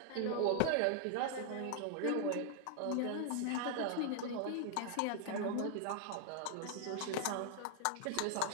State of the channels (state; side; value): different; both; correlation 0.00